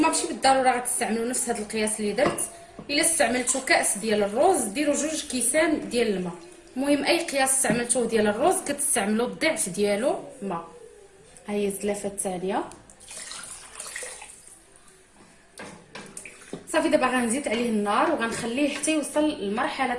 ماشي بالضروره غتستعملوا نفس هذا القياس اللي درت. الا استعملتوا كاس ديال الرز ديروا 2 كيسان ديال الماء. المهم اي قياس استعملتوه ديال الرز كتستعملوا الضعف ديالو ماء. ها هي الزلافه الثانيه. صافي دابا غنزيد عليه النار وغنخليه حتى يوصل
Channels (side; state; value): both; identical; correlation 1.00